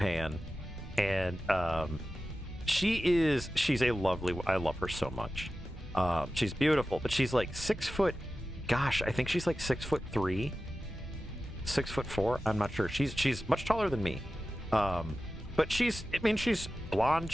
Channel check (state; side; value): normal; both; correlation 0.94